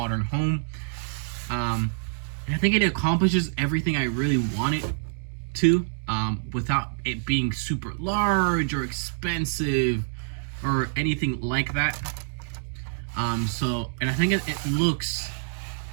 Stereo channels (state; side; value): silent; left; digital silence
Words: home. And I think it accomplishes everything I really want it to, without it being super large or expensive or anything like that. And I think it looks